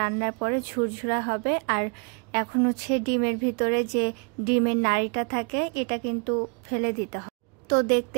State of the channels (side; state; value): left; quieter; 35.9 dB